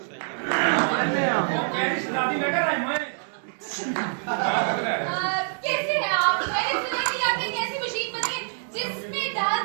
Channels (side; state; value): left; silent; digital silence